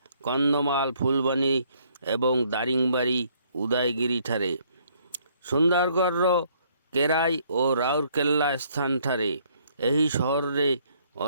କନ୍ଧମାଳ, ଫୁଲବାଣୀ ଏବଂ ଦାରିଙ୍ଗବାଡ଼ି, ଉଦୟଗିରିଠାରେ, ସୁନ୍ଦରଗଡ଼ର କେରାଇ ଓ ରାଉରକେଲା ସ୍ଥାନଠାରେ। ଏହି ସହରରେ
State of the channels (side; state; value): both; inverted; correlation -0.66